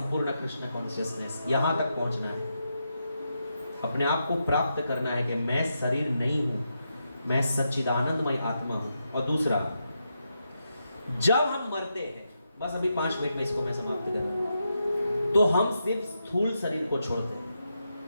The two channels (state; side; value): inverted; both; correlation -0.84